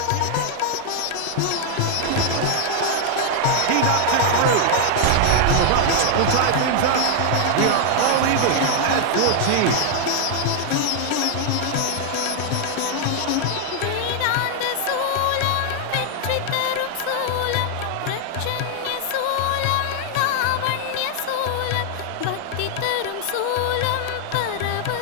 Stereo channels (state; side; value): different; both; correlation 0.00